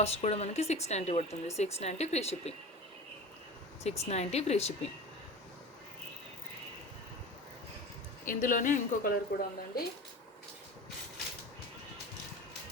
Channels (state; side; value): normal; both; correlation 0.33